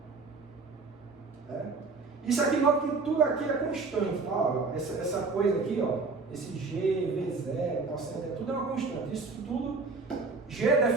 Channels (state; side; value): quieter; left; 4.1 dB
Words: Né? Isso aqui, nota que tudo aqui é constante. Tá? Essa coisa aqui, ó, esse g, v0, cosseno, tudo é uma constante. Isso tudo, g é